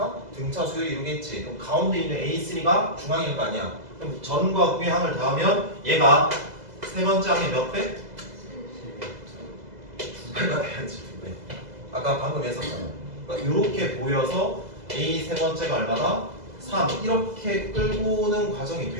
등차 수열 이루겠지. 그럼 가운데 있는 A3가 중앙일 거 아니야. 그럼 전과 후의 항을 더하면 얘가 세 번째 항의 몇 배? 2배가 돼야지. 2배. 아까 방금 했었잖아. 그러니까 이렇게 보여서 A 세 번째가 얼마다? 3. 이렇게 끌고 오는 과정이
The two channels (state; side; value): late; left; 2.0 ms